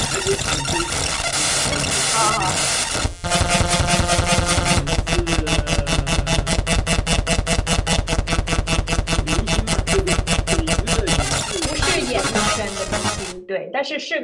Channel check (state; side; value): identical; both; correlation 1.00